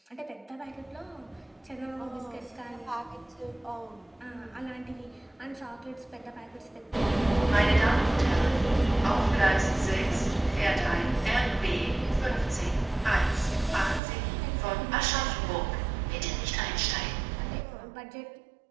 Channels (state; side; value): drops out; left; at 14.0 s